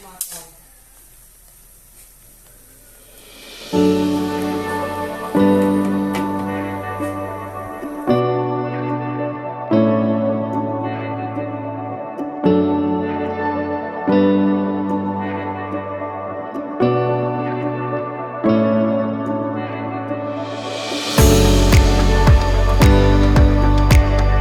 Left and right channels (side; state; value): both; identical; correlation 1.00